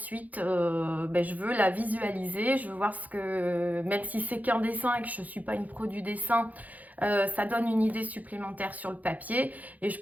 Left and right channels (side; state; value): left; late; 0.079 ms